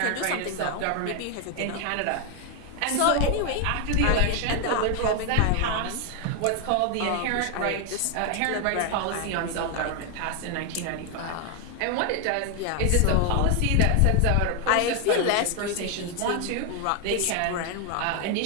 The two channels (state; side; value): different; both; correlation 0.01